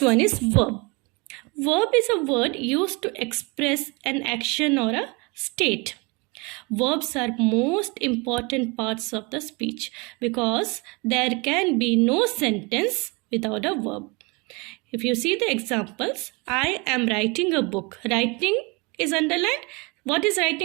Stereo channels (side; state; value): left; quieter; 28.3 dB